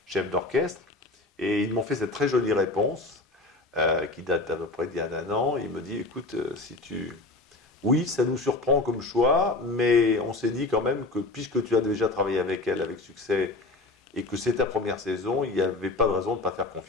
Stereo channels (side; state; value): right; quieter; 3.1 dB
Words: chef d'orchestre. Et ils m'ont fait cette très jolie réponse qui date d'à peu près d'il y a un an. Il me dit, écoute, oui, ça nous surprend comme choix, mais on s'est dit quand même que puisque tu as déjà travaillé avec elle avec succès et que c'est ta première saison, il n'y avait pas de raison de ne pas faire